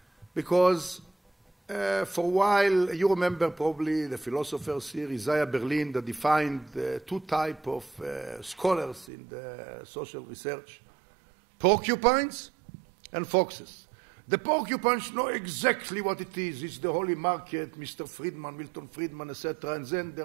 because for a while, you remember probably the philosophers here, Isaiah Berlin, that defined two types of scholars in the social research, porcupines and foxes. The porcupines know exactly what it is. It's the holy market, Mr. Friedman, Milton Friedman, etc. And then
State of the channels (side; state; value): left; drops out; at 9.1 s